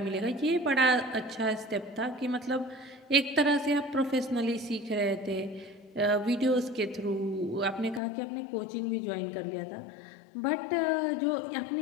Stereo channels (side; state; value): right; drops out; at 8.0 s